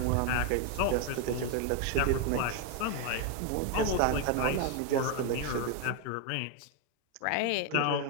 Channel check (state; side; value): different; both; correlation 0.01